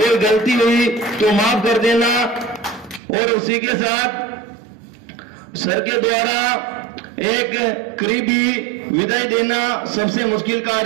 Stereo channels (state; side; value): drops out; left; at 3.0 s